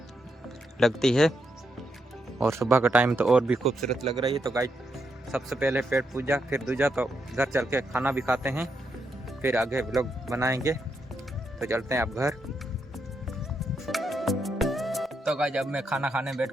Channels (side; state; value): both; normal; correlation 0.81